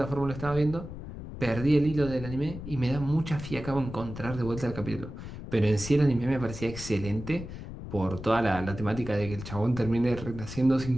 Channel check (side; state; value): left; noise; rumble, 10 dB below the sound